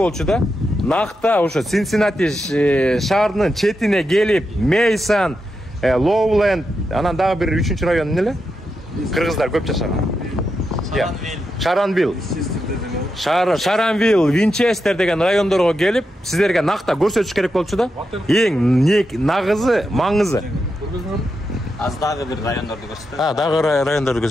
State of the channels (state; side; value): normal; both; correlation 0.86